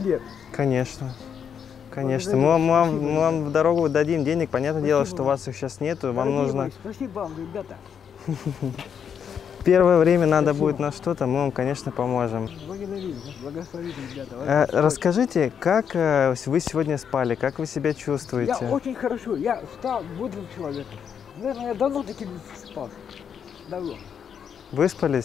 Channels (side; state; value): right; quieter; 7.7 dB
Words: Конечно. Конечно, Благодарю. мы Спасибо, вам в дорогу дадим денег, понятное дело, Спасибо что у вам. вас их сейчас нету, вам Дорогие нужно мои, спасибо вам, ребята. первое время надо будет на что-то, мы вам, конечно, поможем. Благодарю, благословите, ребята. Расскажите, как вы сегодня спали, как вы себя чувствуете? Я очень хорошо, я встал бодрым человеком. Наверное, я давно таким спал. Давно.